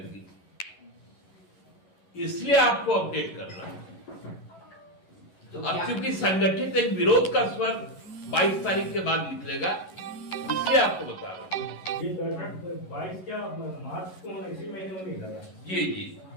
इसलिए आपको अपडेट कर रहा हूं। तो अब चूंकि संगठित एक विरोध का स्वर 22 तारीख के बाद निकलेगा इसलिए आपको बता रहा हूं। ये 22 क्या मार्च को इसी महीने में नहीं लगा? जी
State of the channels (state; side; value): late; right; 11 ms